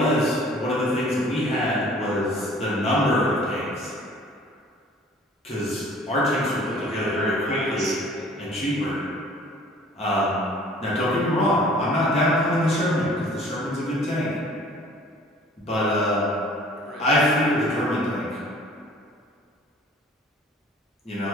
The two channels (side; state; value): both; normal; correlation 0.51